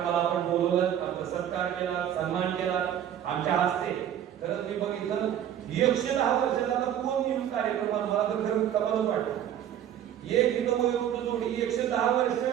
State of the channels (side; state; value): left; quieter; 10.3 dB